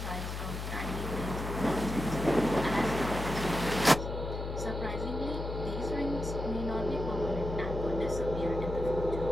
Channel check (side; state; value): left; noise; hum, 5 dB below the sound